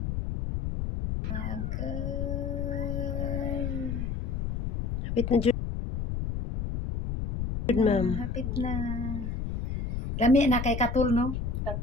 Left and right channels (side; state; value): left; noise; rumble, 2 dB below the sound